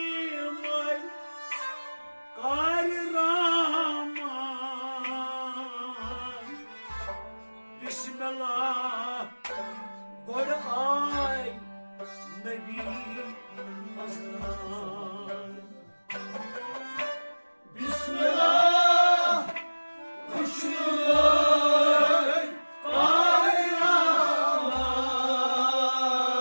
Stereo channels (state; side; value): inverted; both; correlation -1.00